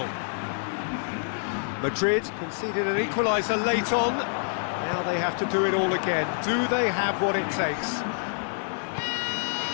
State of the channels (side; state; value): right; silent; 60 dB below the other